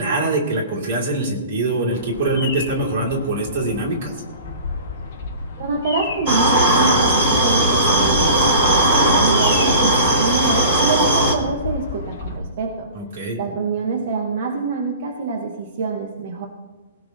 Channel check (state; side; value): inverted; both; correlation -0.39